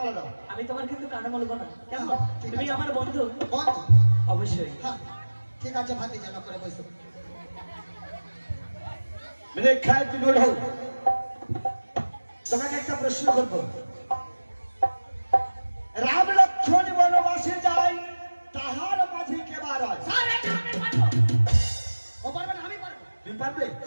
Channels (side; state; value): both; inverted; correlation -1.00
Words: দাও আমি তোমার কিন্তু কানে বলবো না কেমন? ঠিক তুমি আছে। আমার বন্ধু বন্ধু অবশ্যই। হ্যাঁ ঠিক আছে ভাতি জানা করে বসো মেরে খায় তুমি ওঠো তোমাকে একটা প্রশ্ন করবো রাম লক্ষ্মণ বনবাসে যায় তাহার মাঝে কে বার হয় স্যার এটা আমি পারবো ও পারবে না আমি পারবো তুমি পারবে